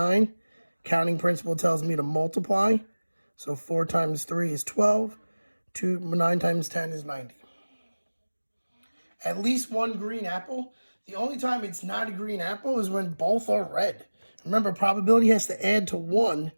Counting principle tells me to multiply. So 4 times 3 is 12. 9 times 10 is 90. At least 1 green apple. The only time it's not a green apple is when both are red. Remember, probability has to add to 1.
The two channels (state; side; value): inverted; both; correlation -1.00